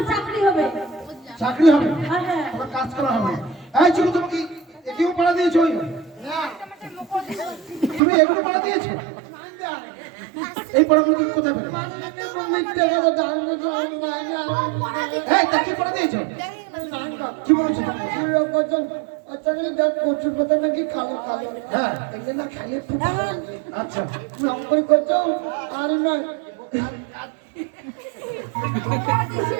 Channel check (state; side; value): drops out; left; at 8.0 s